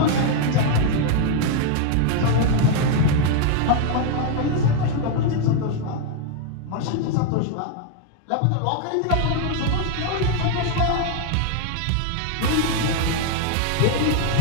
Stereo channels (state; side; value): different; both; correlation 0.01